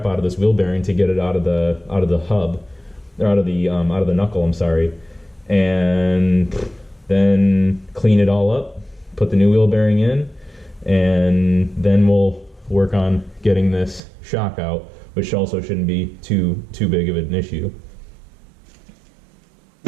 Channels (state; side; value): drops out; left; at 14.0 s